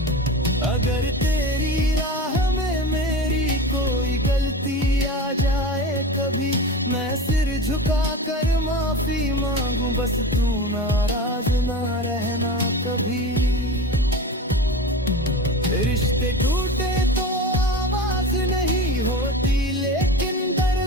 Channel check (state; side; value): normal; both; correlation 0.30